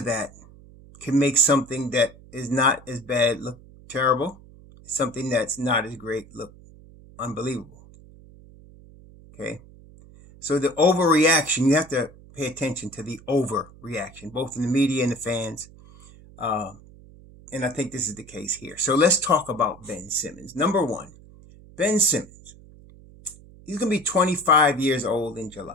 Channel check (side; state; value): right; noise; hum, 22 dB below the sound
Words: that, can make something that is not as bad look terrible, something that's not as great look unbelievable. Okay? So the overreaction, you have to pay attention to the overreaction, both in the media and the fans. And I think this is the case here. So let's talk about Ben Simmons. Number one, Ben Simmons. He's going to be 25 years old in